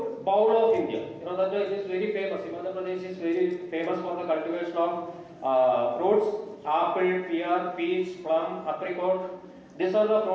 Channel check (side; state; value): both; identical; correlation 1.00